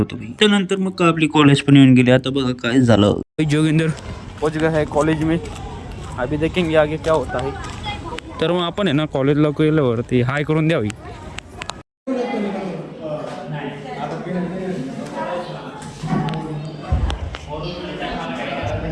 त्यानंतर मग आपली कॉलेज पण येऊन गेली. आता बघा काय झालं. जोगिंदर पहुंच गया है कॉलेज में, अभी देखेंगे आगे क्या होता है. तर मग आपण आहे ना कॉलेजला गेल्यावरती हाय करून द्यावी.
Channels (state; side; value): identical; both; correlation 1.00